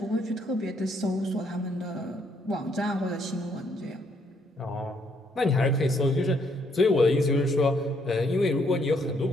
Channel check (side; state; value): both; normal; correlation 0.71